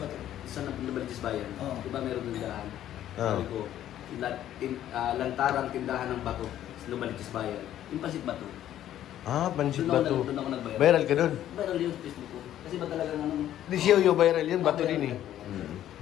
Sa Nabalitis Bayan. Oo. Diba meron tindahan? Oo. Sabi ko, lantarang tindahan ng bato sa Nabalitis Bayan. Yung pansit bato. Ah, pansit Doon bato. ako nag-viral. Viral ka dun. Viral yun sa Facebook ko. Kasi ba talagang ano? Di si Yoyo viral yun, bato din eh. Mm.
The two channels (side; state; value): right; quieter; 11.9 dB